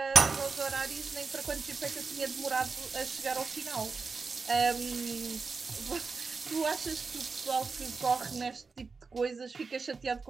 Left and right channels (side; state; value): left; quieter; 4.6 dB